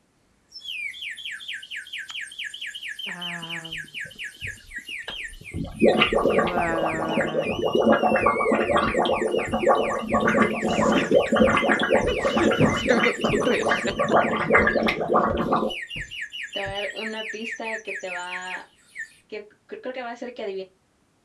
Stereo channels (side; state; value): both; identical; correlation 1.00